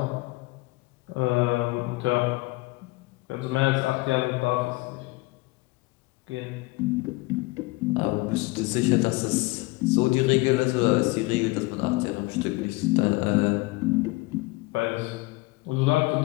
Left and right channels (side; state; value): right; quieter; 22.9 dB